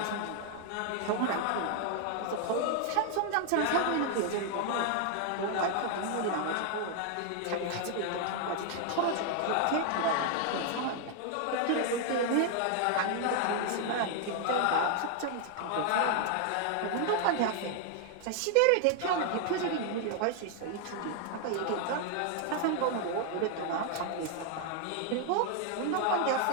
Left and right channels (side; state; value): both; different; correlation 0.00